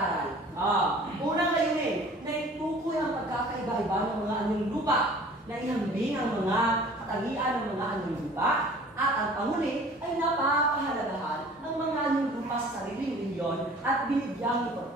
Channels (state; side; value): normal; both; correlation 0.48